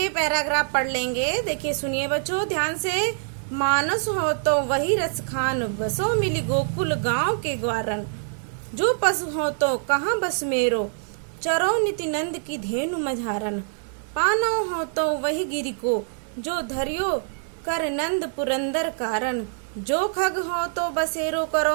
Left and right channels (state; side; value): silent; left; digital silence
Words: पैराग्राफ पढ़ लेंगे। देखिए सुनिए बच्चों ध्यान से। मानस हो तो वही रस खान, बसो मिली गोकुल गांव के ग्वारन। जो पशु हो तो कहाँ बस मेरो, चरो निति नंद की धेनु मझारन। पानो हो तो वही गिरी को, जो धरियो कर नंद पुरंदर कारण। जो खग हो तो बसेरो